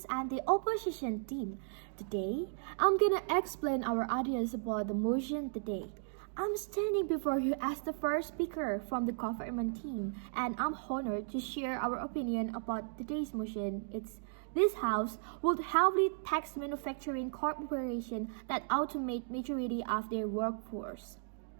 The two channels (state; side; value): silent; left; digital silence